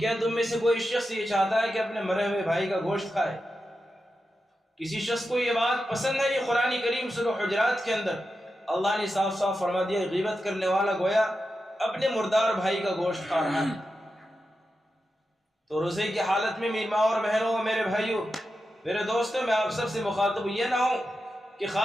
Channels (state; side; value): normal; both; correlation 0.90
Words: تم میں سے کوئی شخص یہ چاہتا ہے کہ اپنے مرے ہوئے بھائی کا گوشت کھائے. کسی شخص کو یہ بات پسند ہے. یہ قرآن کریم سورہ حجرات کے اندر اللہ نے صاف صاف فرما دیا غیبت کرنے والا گویا اپنے مردار بھائی کا گوشت کھا رہا ہے. تو روزے کی حالت میں میری ماں اور بہنوں، میرے بھائیوں، میرے دوستوں، میں آپ سب سے مخاطب یہ نہ ہوں کہ